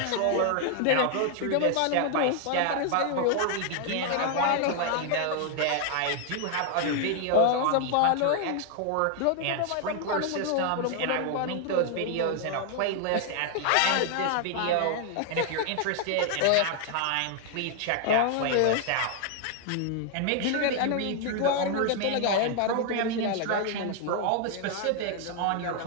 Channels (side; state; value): both; different; correlation 0.00